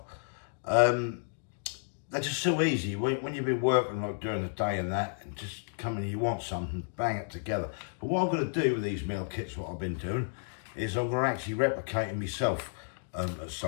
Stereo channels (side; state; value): right; silent; digital silence